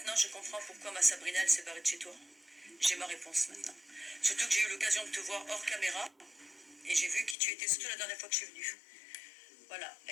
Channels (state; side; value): drops out; right; at 7.4 s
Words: je comprends pourquoi ma Sabrina, elle s'est barrée de chez toi. J'ai ma réponse maintenant. Surtout que j'ai eu l'occasion de te voir hors caméra. Et j'ai vu qui tu étais, surtout la dernière fois que je suis venue. Voilà,